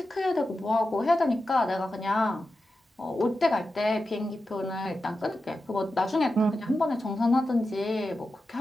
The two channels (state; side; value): normal; both; correlation 0.91